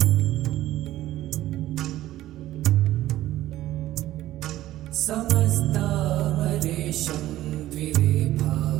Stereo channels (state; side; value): quieter; left; 14.6 dB